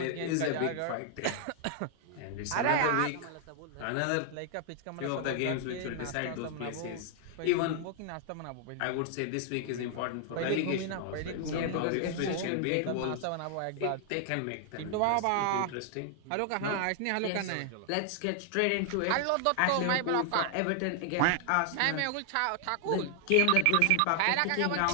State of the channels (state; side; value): different; both; correlation 0.00